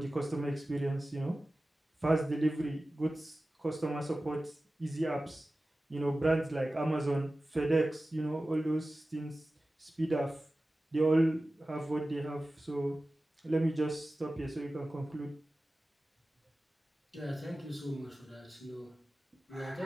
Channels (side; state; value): both; normal; correlation 0.96